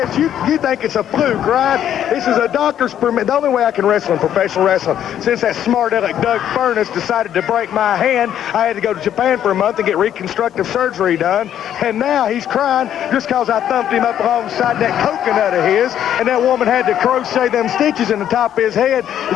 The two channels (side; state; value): right; quieter; 10.4 dB